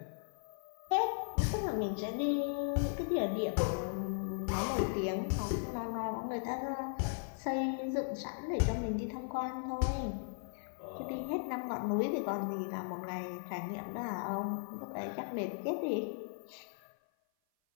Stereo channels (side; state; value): right; silent; 53 dB below the other